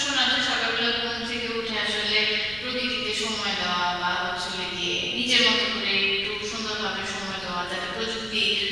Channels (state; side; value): noise; right; rumble, 18 dB below the sound